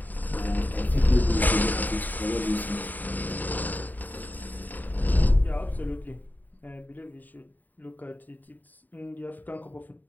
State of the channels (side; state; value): right; late; 0.085 ms